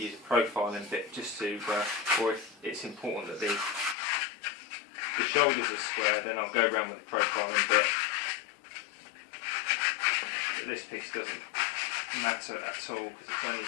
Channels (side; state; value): right; drops out; at 4.0 s